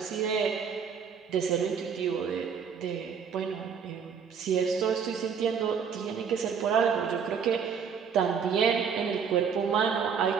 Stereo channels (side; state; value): left; quieter; 6.8 dB